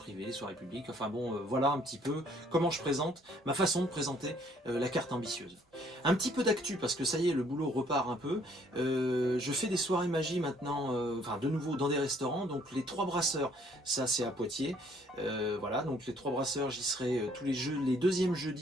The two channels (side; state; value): both; normal; correlation 0.63